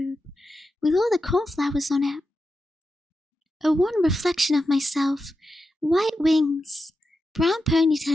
with all the cornflowers on it. A wan reflection of myself, white wings, brown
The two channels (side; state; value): both; normal; correlation 0.89